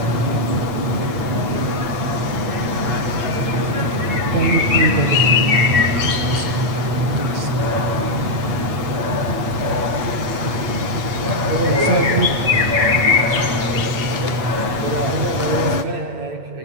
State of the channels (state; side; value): late; left; 8.8 ms